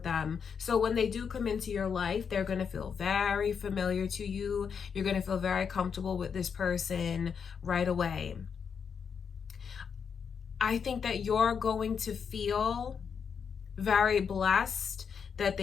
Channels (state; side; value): quieter; right; 6.6 dB